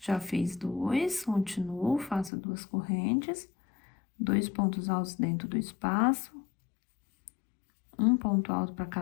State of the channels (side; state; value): right; drops out; at 2.3 s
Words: fiz 2, continuo, faço 2 correntes, 2 pontos altos dentro do espaço, um ponto alto para